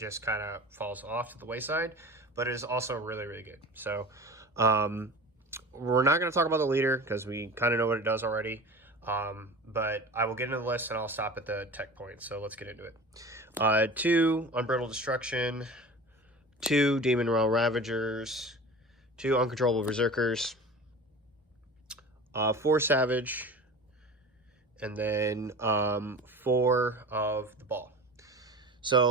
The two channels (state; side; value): normal; both; correlation 0.35